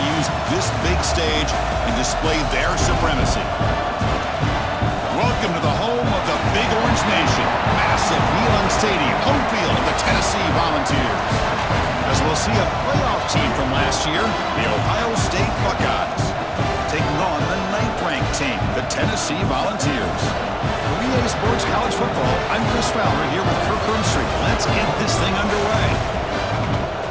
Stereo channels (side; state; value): both; identical; correlation 1.00